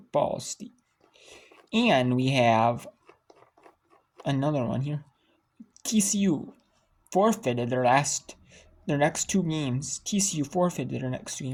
State. And we have another one here. TCU forfeited their next 2 games. TCU forfeited their next 2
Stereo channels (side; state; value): both; identical; correlation 1.00